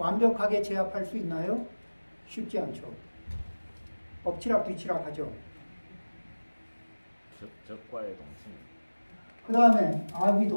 제압할 수 있나요? 쉽지 않죠. 엎치락 뒤치락 하죠. 적과의 동침. 그 다음에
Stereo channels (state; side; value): inverted; both; correlation -1.00